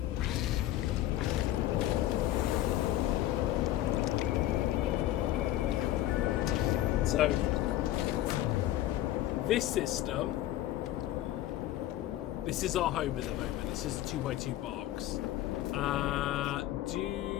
So, this system, this is our home at the moment. This is a 2x2 box.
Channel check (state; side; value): quieter; right; 13.9 dB